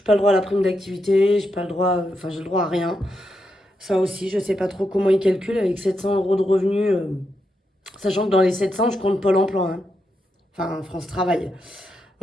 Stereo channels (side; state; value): both; normal; correlation 0.84